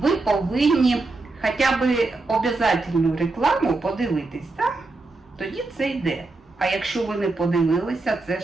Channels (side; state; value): left; quieter; 3.4 dB